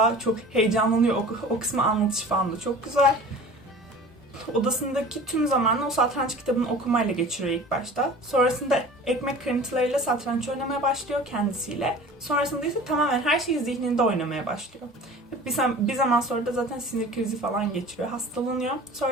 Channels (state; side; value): normal; both; correlation 0.41